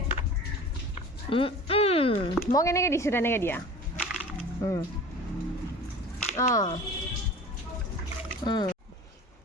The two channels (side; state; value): both; normal; correlation 0.40